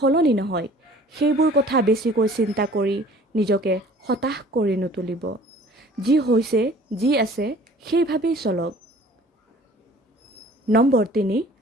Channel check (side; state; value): both; normal; correlation 0.50